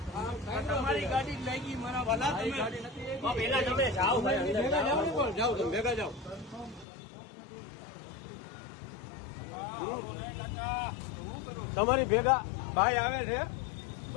તમારી ગાડી લાગી મારા વાલા પેલા તમે જાઓ જાઓ તમે ભેગા જાઓ તમારી ભેગા ભાઈ આવે છે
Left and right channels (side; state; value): right; drops out; at 6.9 s